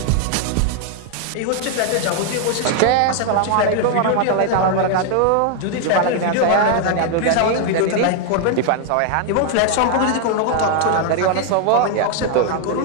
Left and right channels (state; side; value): different; both; correlation 0.00